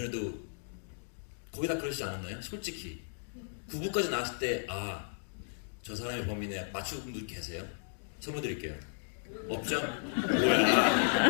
거의 다 그러시지 않았나요? 솔직히 9부까지 나왔을 때 저 사람이 범인이야 맞추는 분들 계세요? 선물 드릴게요. 없죠?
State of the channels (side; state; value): right; silent; digital silence